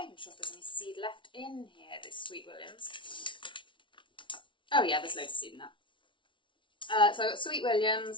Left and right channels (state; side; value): late; right; 0.24 ms